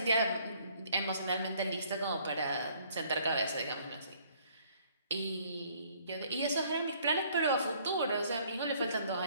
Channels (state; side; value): inverted; both; correlation -0.61